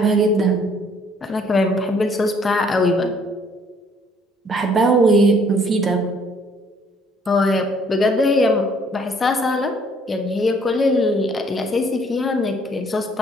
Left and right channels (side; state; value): both; normal; correlation 0.62